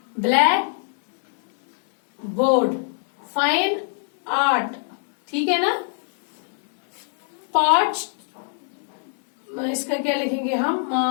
black board, fine art. ठीक है ना. पॉट, इसका क्या लिखेंगे हम?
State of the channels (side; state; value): right; silent; 62 dB below the other